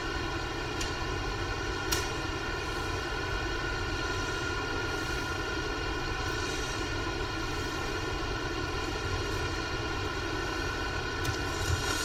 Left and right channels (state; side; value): identical; both; correlation 1.00